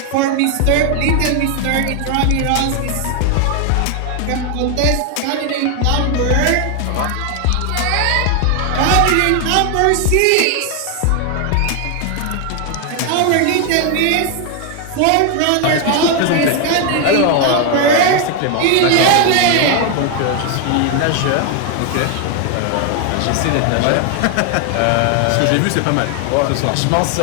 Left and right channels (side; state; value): both; different; correlation 0.01